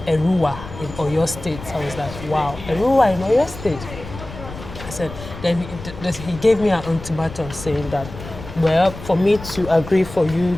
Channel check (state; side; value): noise; left; rumble, 13 dB below the sound